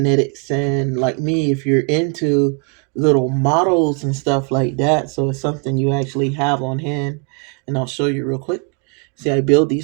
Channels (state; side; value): quieter; left; 35.5 dB